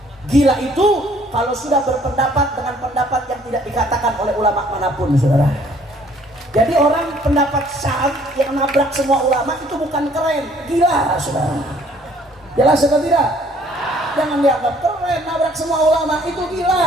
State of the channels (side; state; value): both; normal; correlation 0.59